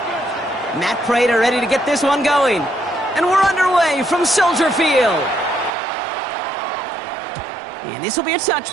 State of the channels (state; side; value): drops out; left; at 5.7 s